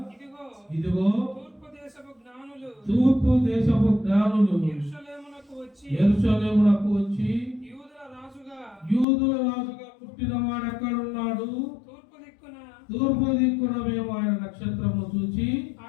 ఇదిగో తూర్పు దేశపు జ్ఞానులు యెరూషలేమునకు వచ్చి యూదుల రాజుగా పుట్టిన వాడు ఎక్కడున్నాడు, తూర్పు దిక్కున మేము ఆయన నక్షత్రము చూచి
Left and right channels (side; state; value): right; drops out; at 9.1 s